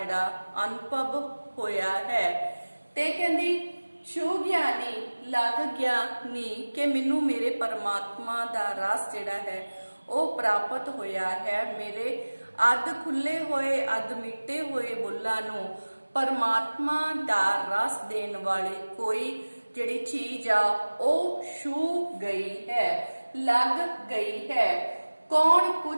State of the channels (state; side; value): inverted; both; correlation -1.00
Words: ਅਨੁਭਵ ਹੋਇਆ ਹੈ ਤੇ ਕਹਿੰਦੀ ਛੂ ਗਿਆਨੀ ਲੱਗ ਗਿਆ ਨੀ ਕਿ ਮੈਨੂੰ ਮੇਰੇ ਪਰਮਾਤਮਾ ਦਾ ਰਸ ਜਿਹੜਾ ਹੈ ਉਹ ਪ੍ਰਾਪਤ ਹੋਇਆ ਹੈ। ਮੇਰੇ ਅੱਧ ਖੁੱਲੇ ਹੋਏ ਅੱਧ ਮਿੱਟੇ ਹੋਏ ਬੁੱਲਾਂ ਨੂੰ परमात्मा दा रस देने वाली कोई जिहड़ी चीज आ ओ छू गई है, लग गई है। कौन